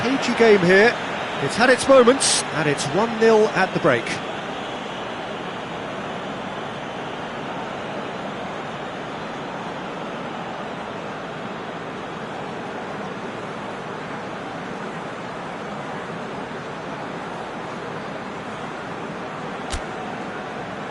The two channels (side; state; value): both; identical; correlation 1.00